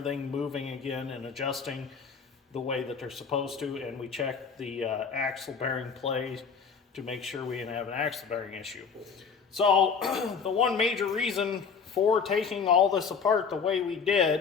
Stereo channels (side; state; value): right; quieter; 5.9 dB